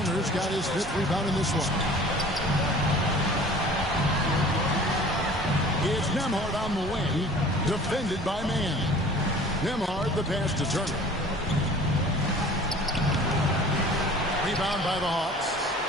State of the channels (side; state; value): both; normal; correlation 0.46